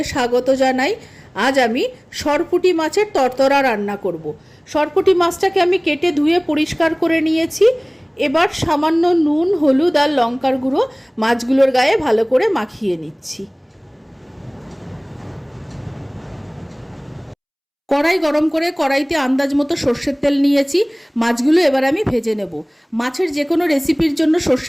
স্বাগত জানাই। আজ আমি সরপুঁটি মাছের তরতরা রান্না করব। সরপুঁটি মাছটাকে আমি কেটে ধুয়ে পরিষ্কার করে নিয়েছি। এবার সামান্য নুন, হলুদ আর লঙ্কার গুঁড়ো মাছগুলোর গায়ে ভালো করে মাখিয়ে নিচ্ছি। কড়াই গরম করে কড়াইতে আন্দাজ মতো সর্ষের তেল নিয়েছি। মাছগুলো এবার আমি ভেজে নেব। মাছের যে কোনো রেসিপির জন্য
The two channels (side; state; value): both; identical; correlation 1.00